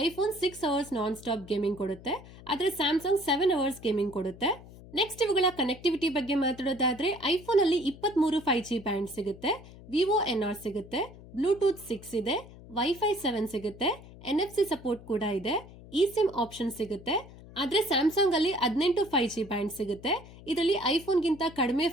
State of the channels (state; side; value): noise; left; hum, 18 dB below the sound